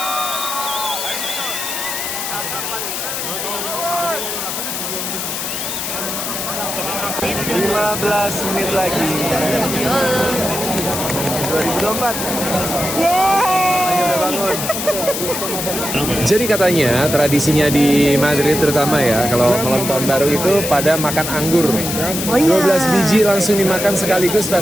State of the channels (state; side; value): noise; left; hiss, 4 dB below the sound